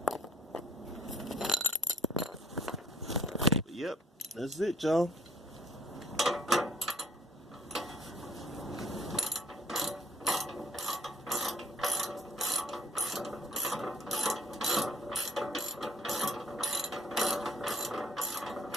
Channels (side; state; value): both; normal; correlation 0.58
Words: Yep, that's it, y'all.